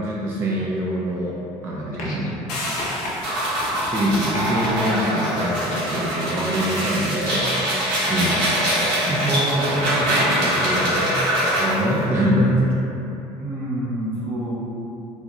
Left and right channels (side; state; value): both; normal; correlation 0.39